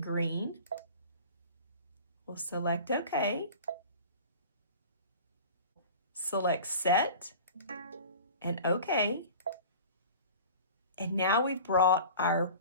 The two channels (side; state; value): both; inverted; correlation -0.40